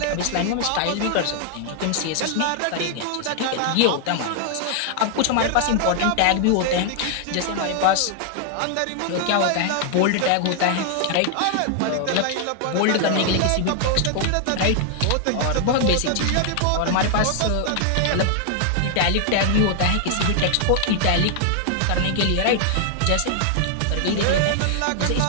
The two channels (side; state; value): both; different; correlation 0.00